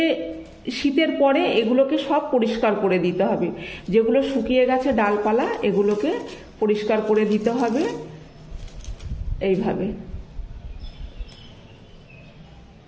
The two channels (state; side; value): identical; both; correlation 1.00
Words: শীতের পরে এগুলোকে সব পরিষ্কার করে দিতে হবে, যেগুলো শুকিয়ে গেছে ডালপালা এগুলোকে পরিষ্কার করে দিতে হবে এইভাবে।